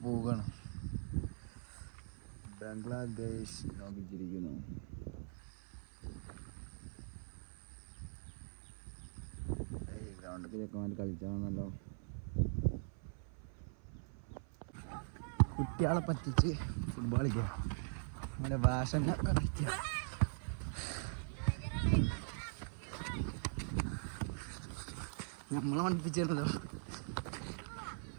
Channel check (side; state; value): left; silent; 50 dB below the other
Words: പോവുകയാണ്. ബംഗ്ലാദേശ് നോക്കിച്ചിരിക്കുന്നു. ഗ്രൗണ്ടിൽ ചെക്കന്മാർ കളിച്ചാണെന്നല്ലോ. കുട്ടികളെ പറ്റിച്ച് ഫുട്ബോൾ കളിക്കുക. അങ്ങനെ ഭാഷ കളിക്കുക. നമ്മളെ പഠിപ്പിച്ചിരുന്നല്ലോ.